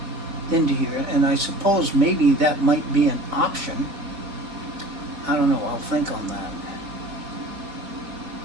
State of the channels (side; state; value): left; late; 4.2 ms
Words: into here, and I suppose maybe that might be an option. I don't know, I'll think on that.